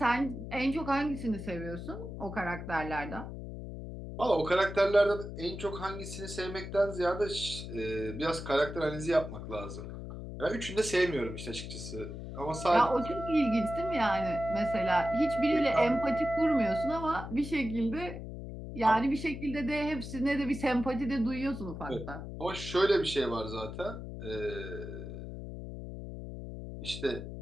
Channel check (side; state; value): left; noise; hum, 9 dB below the sound